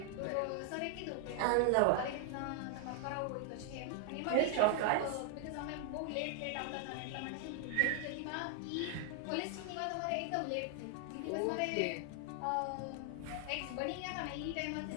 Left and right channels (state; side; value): different; both; correlation 0.00